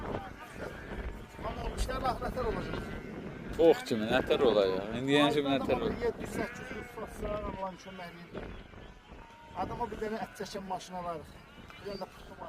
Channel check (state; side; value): identical; both; correlation 1.00